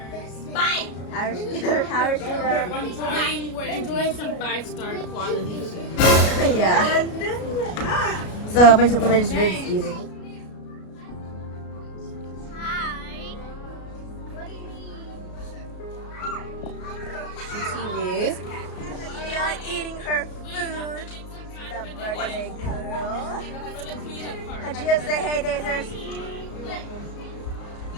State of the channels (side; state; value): right; late; 33 ms